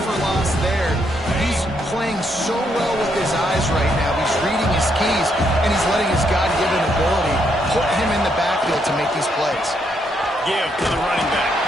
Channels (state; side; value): normal; both; correlation 0.75